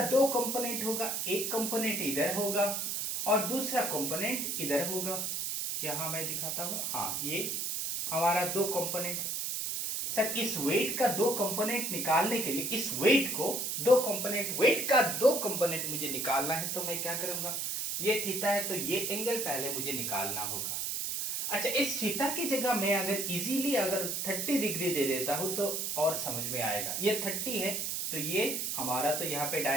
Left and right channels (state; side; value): noise; right; hiss, 1 dB below the sound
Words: दो कंपोनेंट होगा, एक कंपोनेंट इधर होगा और दूसरा कंपोनेंट इधर होगा। यहां मैं दिखाता हूं, हाँ ये हमारा दो कंपोनेंट। सर इस वेट का दो कंपोनेंट निकालने के लिए इस वेट को दो कंपोनेंट, वेट का दो कंपोनेंट मुझे निकालना है, तो मैं क्या करूंगा? ये थीटा है तो ये एंगल पहले मुझे निकालना होगा। अच्छा, इस थीटा की जगह मैं अगर इजीली अगर 30 डिग्री दे देता हूं तो और समझ में आएगा। ये 30 है तो ये हमारा, तो यहाँ पे